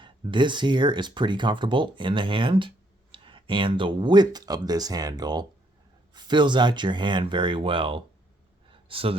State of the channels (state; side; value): normal; both; correlation 0.70